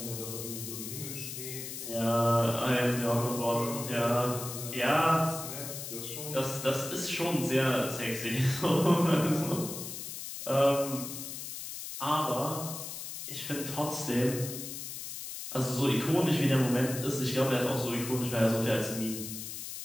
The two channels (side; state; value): left; noise; hiss, 8 dB below the sound